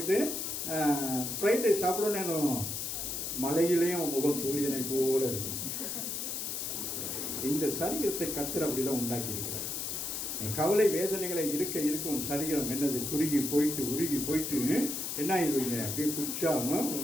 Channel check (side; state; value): left; noise; hiss, 3 dB below the sound